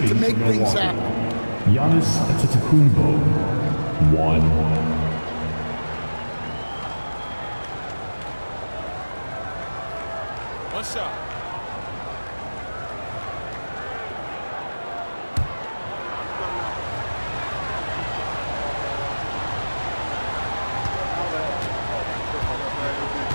to make things happen. Giannis Antetokounmpo, 1. One shot.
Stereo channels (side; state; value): both; inverted; correlation -1.00